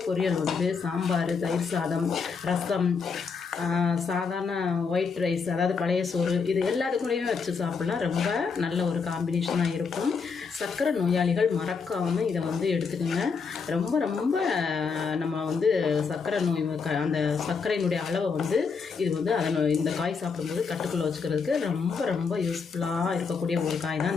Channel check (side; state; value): right; quieter; 5.3 dB